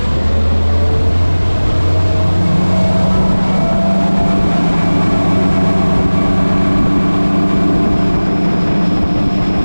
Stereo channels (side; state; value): both; inverted; correlation -1.00